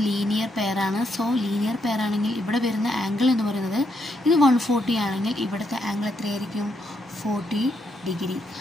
ലീനിയർ പെയറാണ്. സോ ലീനിയർ പെയർ ആണെങ്കിൽ ഇവിടെ വരുന്ന ആംഗിൾ എന്ന് പറയുന്നത് ഇത് 140 ആണെങ്കിൽ ഇവിടുത്തെ ആംഗിൾ എത്രയായിരിക്കും? 40 ഡിഗ്രി.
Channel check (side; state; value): both; normal; correlation 0.78